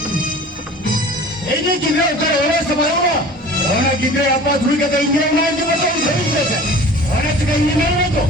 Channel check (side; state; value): both; normal; correlation 0.42